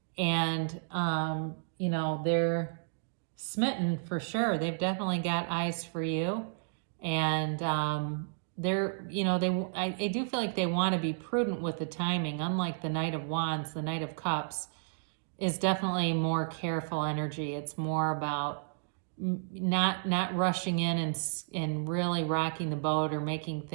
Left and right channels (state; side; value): silent; left; digital silence